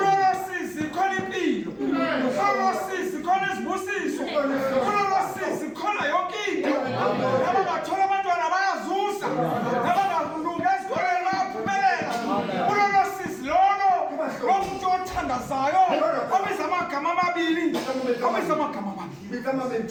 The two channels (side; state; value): both; identical; correlation 1.00